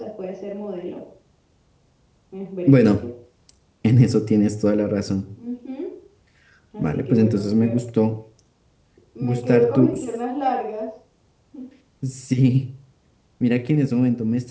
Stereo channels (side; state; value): both; identical; correlation 1.00